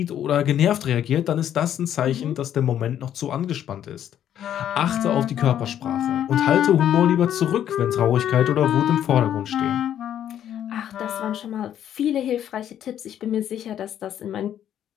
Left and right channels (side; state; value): right; quieter; 10.4 dB